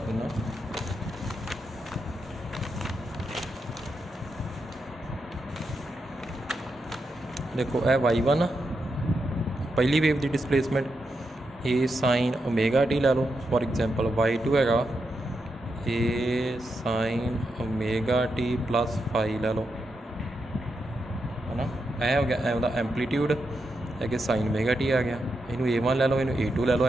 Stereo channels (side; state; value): both; normal; correlation 0.85